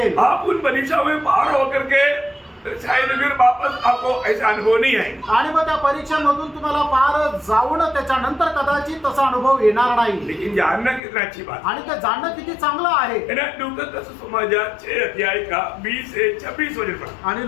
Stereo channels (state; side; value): drops out; right; at 11.0 s